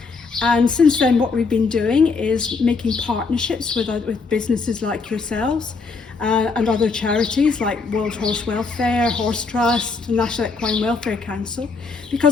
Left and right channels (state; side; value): quieter; right; 4.5 dB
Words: And since then, what we've been doing is making partnerships with businesses like yourselves and other charities like World Horse Welfare, Horse Trust, and National Equine Welfare Council.